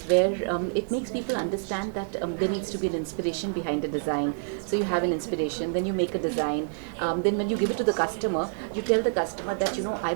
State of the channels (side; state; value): left; silent; digital silence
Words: where it makes people understand that there needs to be an inspiration behind a design. So you have an inspiration, then you make a design, then when you give it to the customer, you tell the customer that, I